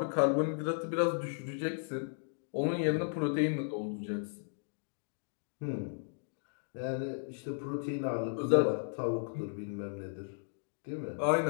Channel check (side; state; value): right; silent; digital silence